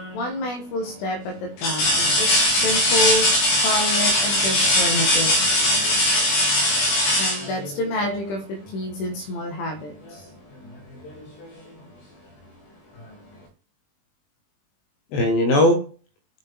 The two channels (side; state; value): right; late; 20 ms